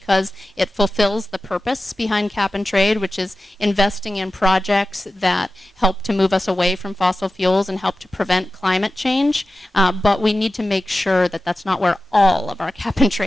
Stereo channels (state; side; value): normal; both; correlation 0.94